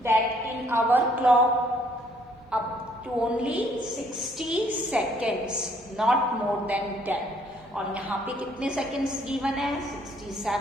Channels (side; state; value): both; normal; correlation 0.64